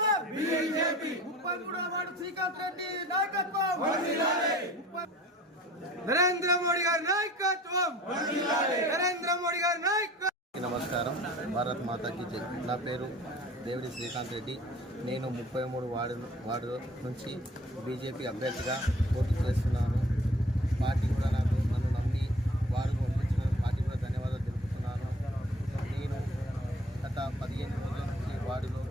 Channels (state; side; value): normal; both; correlation 0.48